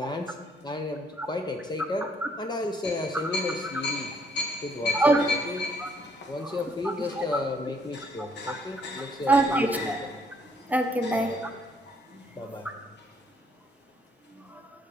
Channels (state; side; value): normal; both; correlation 0.67